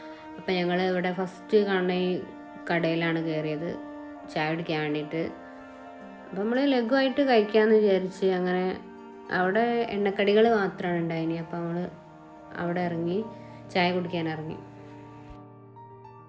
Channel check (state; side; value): identical; both; correlation 1.00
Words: അപ്പം ഞങ്ങൾ ഇവിടെ ഫസ്റ്റ് കാണുന്ന ഈ കടയിലാണ് കയറിയത് ചായ കുടിക്കാൻ വേണ്ടിയിട്ട്. അപ്പം നമ്മൾ ലഘുവായിട്ട് കഴിക്കാമെന്ന് വിചാരിച്ച് അങ്ങനെ അവിടെ എണ്ണക്കടികൾ മാത്രമാണ് ഉണ്ടായിനി. അപ്പം നമ്മൾ അവിടെ ഇറങ്ങി ചായ കുടിക്കാൻ ഇറങ്ങി.